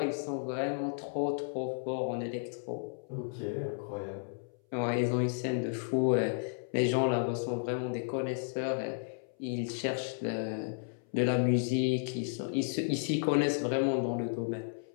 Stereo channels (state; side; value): silent; right; 56 dB below the other